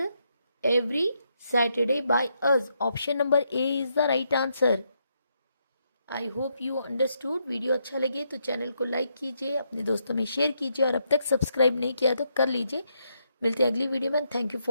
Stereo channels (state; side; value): inverted; both; correlation -0.78